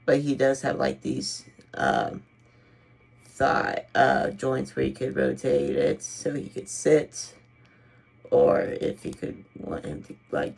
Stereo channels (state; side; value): identical; both; correlation 1.00